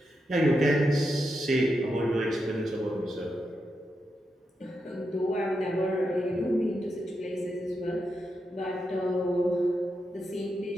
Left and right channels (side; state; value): both; normal; correlation 0.86